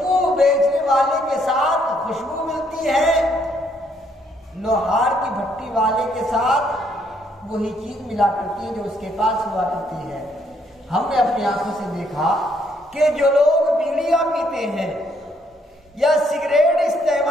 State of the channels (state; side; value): normal; both; correlation 0.70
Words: بیچنے والے کے ساتھ خوشبو ملتی ہے، لوہار کی بھٹی والے کے ساتھ وہی چیز ملا کرتی ہے جو اس کے پاس ہوا کرتی ہے۔ ہم نے اپنی آنکھوں سے دیکھا کہ جو لوگ بیڑیاں پیتے ہیں یا سگریٹ